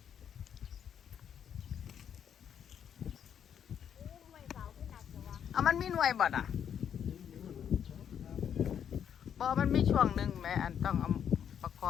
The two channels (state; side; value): quieter; right; 8.6 dB